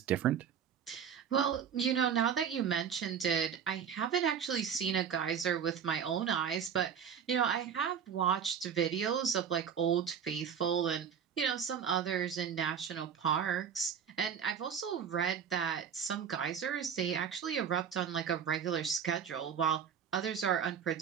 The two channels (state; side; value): quieter; left; 7.8 dB